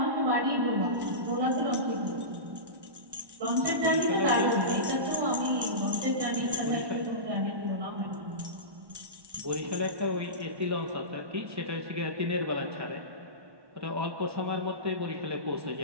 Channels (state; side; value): late; left; 1.1 ms